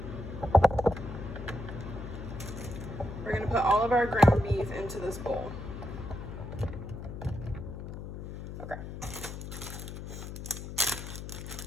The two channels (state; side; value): noise; left; hum, 8 dB below the sound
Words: we're going to put all of our ground beef into this bowl. Okay.